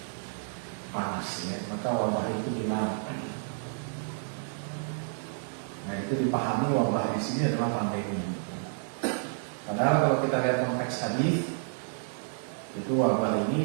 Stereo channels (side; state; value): left; silent; 58 dB below the other